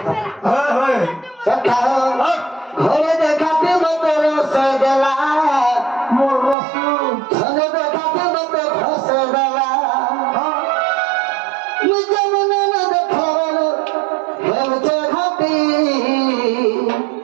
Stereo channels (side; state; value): left; drops out; at 6.6 s